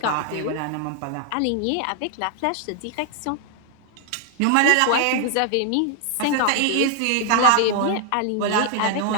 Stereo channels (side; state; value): both; different; correlation 0.00